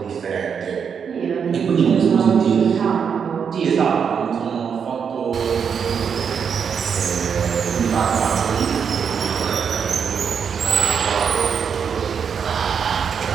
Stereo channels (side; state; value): left; quieter; 6.9 dB